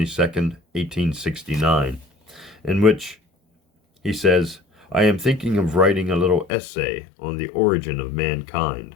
1869, in which he says, "I am thinking of writing a little essay on the origin of mankind.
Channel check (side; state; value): right; drops out; at 6.5 s